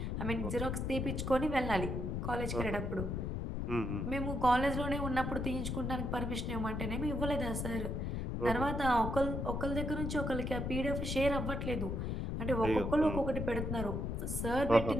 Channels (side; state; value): left; noise; rumble, 2 dB below the sound